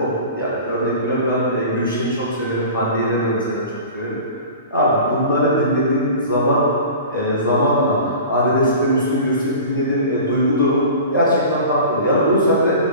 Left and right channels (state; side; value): inverted; both; correlation -0.38